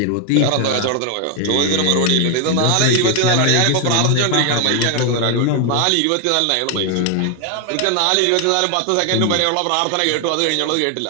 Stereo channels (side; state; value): both; different; correlation 0.00